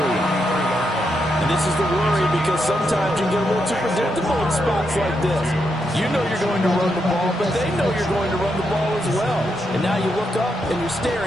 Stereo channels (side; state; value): both; normal; correlation 0.82